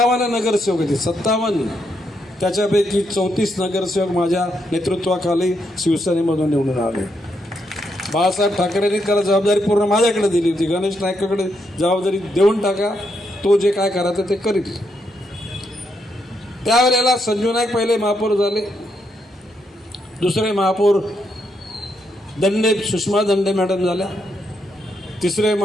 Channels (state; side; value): normal; both; correlation 0.79